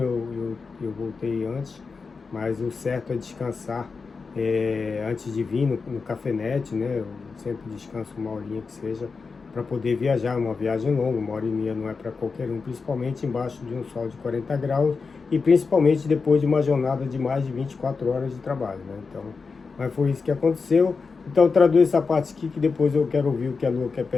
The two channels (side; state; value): right; quieter; 4.7 dB